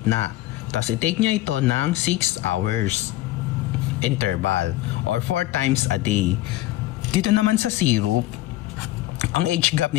Tapos i-take niya ito ng 6 hours interval or 4 times a day. Dito naman sa syrup, ang age gap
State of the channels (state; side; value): quieter; right; 16.2 dB